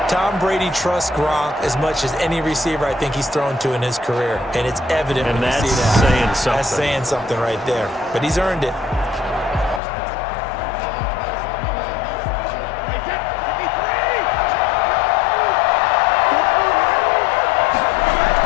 Tom Brady trusts Gronk as much as any receiver I think he's thrown to in his career. And it's evident when you see that. Saying something. That's saying something right there. But he's earned it.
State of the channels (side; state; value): right; drops out; at 9.8 s